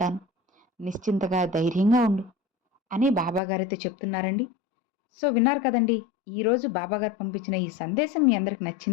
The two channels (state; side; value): drops out; right; at 3.4 s